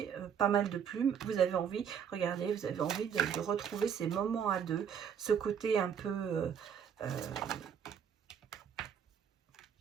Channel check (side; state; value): left; quieter; 7.9 dB